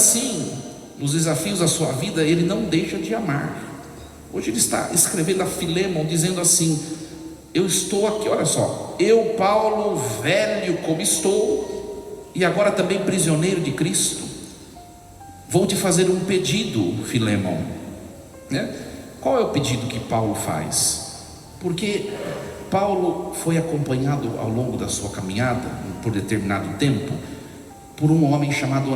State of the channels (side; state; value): both; identical; correlation 1.00